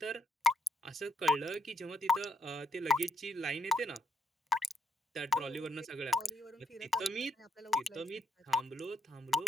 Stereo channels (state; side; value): normal; both; correlation 0.76